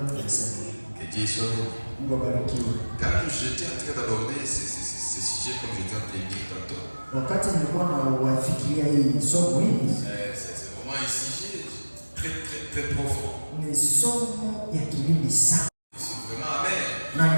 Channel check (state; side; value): inverted; both; correlation -1.00